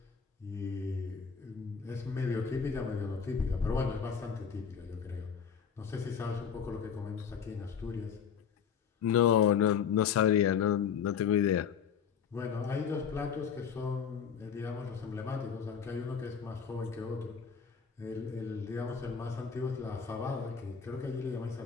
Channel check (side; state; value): right; quieter; 7.0 dB